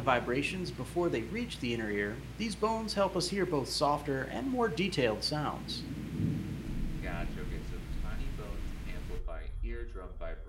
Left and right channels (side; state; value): both; identical; correlation 1.00